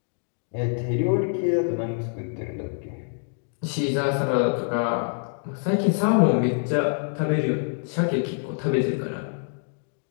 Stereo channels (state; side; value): silent; right; 61 dB below the other